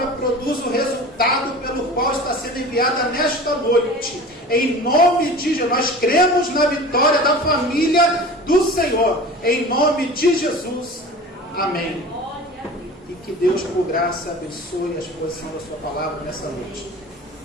produza o resultado pelo qual está sendo enviada nesta noite. Em nome de Jesus, nós cremos na vitória da família do Senhor. Em nome de Jesus, amém. E que Deus, por graça, abençoe a exposição da Sua palavra nessa noite.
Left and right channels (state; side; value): normal; both; correlation 0.37